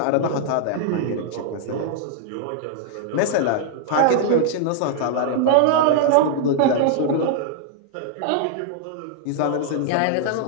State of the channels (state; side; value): different; both; correlation -0.01